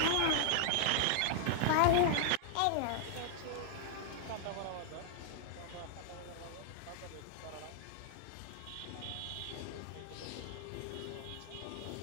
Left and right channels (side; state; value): both; different; correlation 0.00